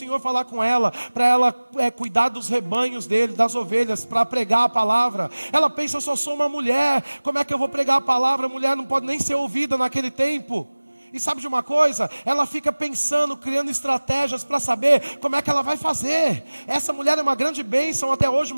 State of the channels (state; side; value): inverted; both; correlation -1.00